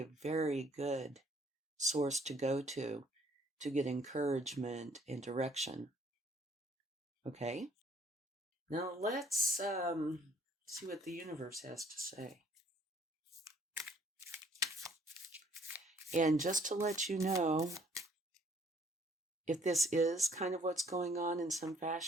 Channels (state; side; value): normal; both; correlation 0.61